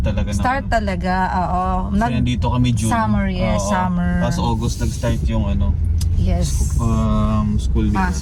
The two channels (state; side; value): identical; both; correlation 1.00